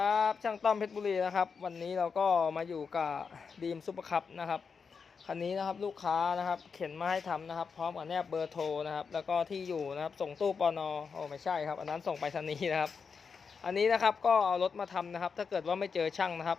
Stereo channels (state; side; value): quieter; right; 5.6 dB